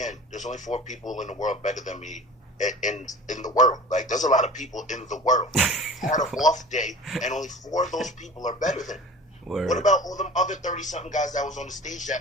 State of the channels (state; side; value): normal; both; correlation 0.39